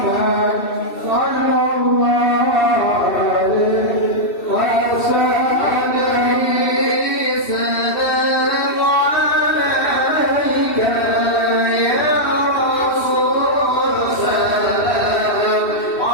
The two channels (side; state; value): right; late; 2.7 ms